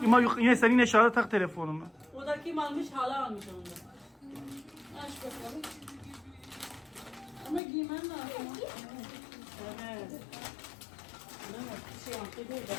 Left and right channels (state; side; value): drops out; right; at 7.6 s